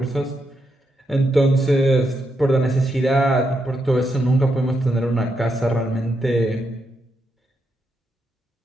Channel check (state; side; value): normal; both; correlation 0.81